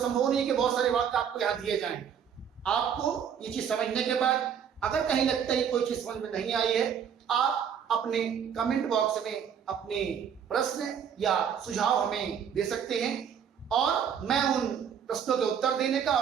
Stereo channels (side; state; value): left; quieter; 8.0 dB